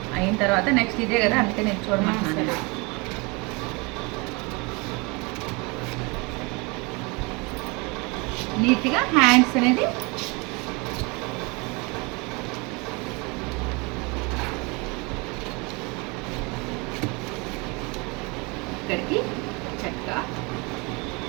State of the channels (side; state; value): left; quieter; 28.2 dB